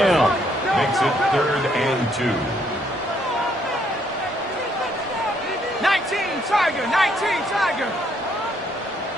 Makes it 3rd and 2. 19 Tiger.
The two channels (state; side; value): normal; both; correlation 0.70